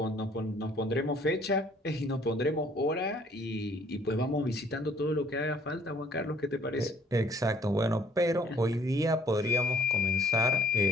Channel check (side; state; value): both; normal; correlation 0.59